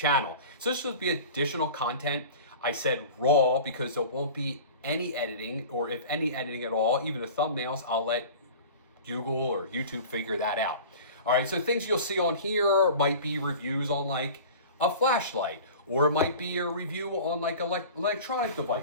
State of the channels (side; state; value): both; inverted; correlation -0.38